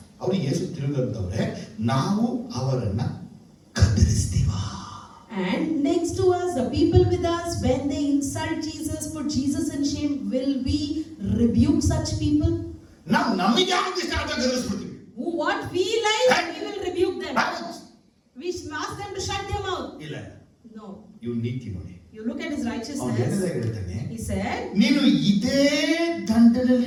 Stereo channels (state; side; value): identical; both; correlation 1.00